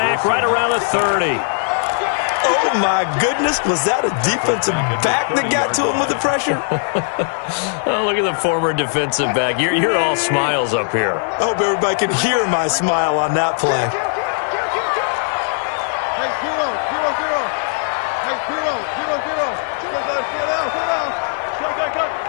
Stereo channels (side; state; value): right; silent; digital silence